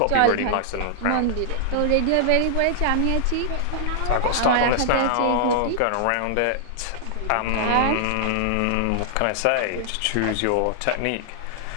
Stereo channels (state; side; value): different; both; correlation -0.01